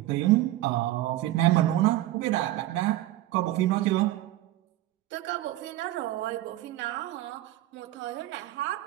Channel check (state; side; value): quieter; left; 15.2 dB